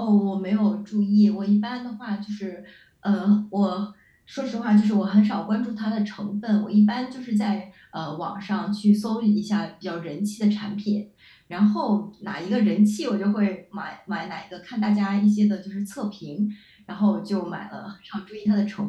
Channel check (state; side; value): identical; both; correlation 1.00